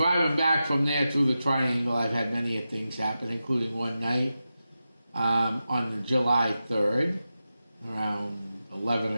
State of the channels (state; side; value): inverted; both; correlation -0.91